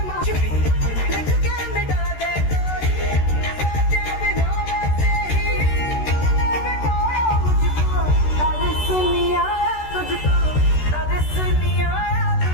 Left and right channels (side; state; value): right; late; 13 ms